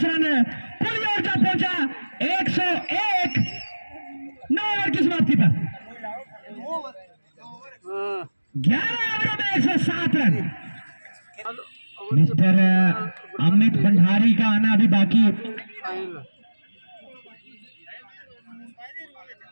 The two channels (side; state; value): both; inverted; correlation -1.00